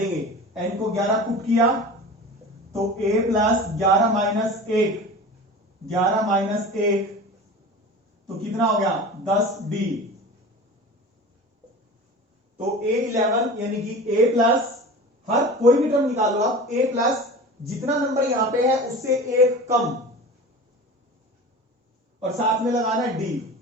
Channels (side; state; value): both; normal; correlation 0.35